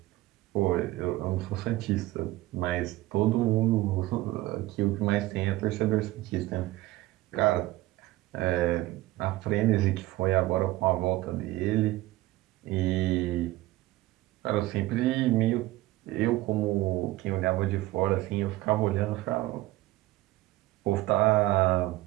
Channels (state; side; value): quieter; left; 17.5 dB